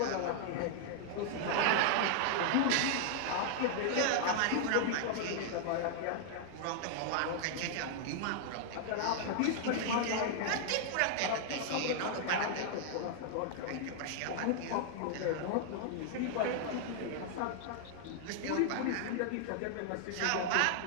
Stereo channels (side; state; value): both; different; correlation 0.00